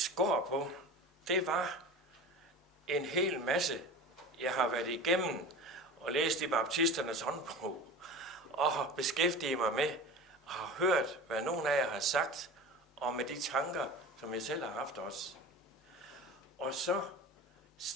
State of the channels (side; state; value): both; normal; correlation 0.34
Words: går på, det var en hel masse, jeg har været igennem og læst i baptisternes håndbog, og har beskæftiget mig med, og har hørt, hvad nogen af jer har sagt, og med de tanker, som jeg selv har haft også. Og så